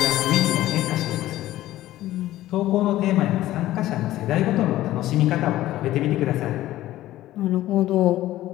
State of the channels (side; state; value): right; quieter; 15.0 dB